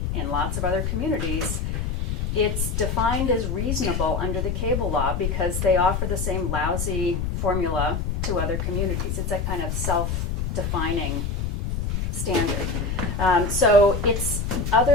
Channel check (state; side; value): noise; left; rumble, 1 dB below the sound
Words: in lots of other communities, it's defined as reasonable under the cable law because they offer the same lousy formula to other communities. It's a kind of self-defining standard. So